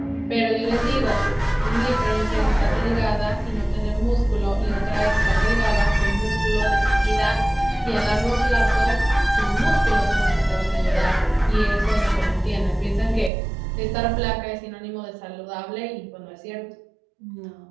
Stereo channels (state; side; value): drops out; left; at 13.3 s